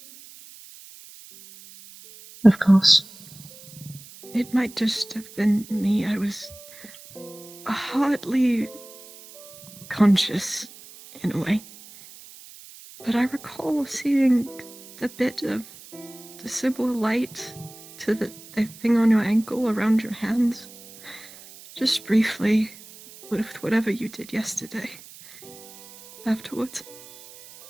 Of course. It might just have been me. I was hardly conscious, in a way. But I recall seeing the bit of the Sybil light to the thing on your ankle around your hands. Just briefly, with whatever you did yesterday. Afterwards.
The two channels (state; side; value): noise; right; hiss, 19 dB below the sound